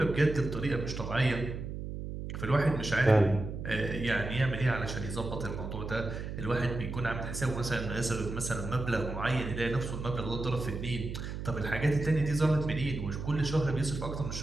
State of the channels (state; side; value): noise; right; hum, 6 dB below the sound